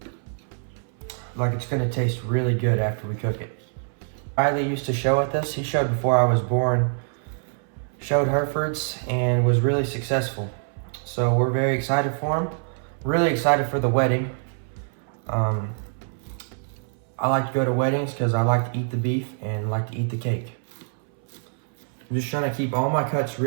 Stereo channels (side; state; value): left; silent; 62 dB below the other